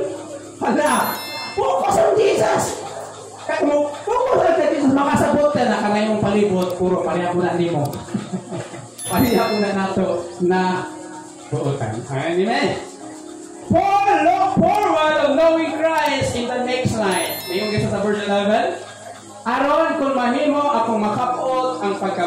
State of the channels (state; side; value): identical; both; correlation 1.00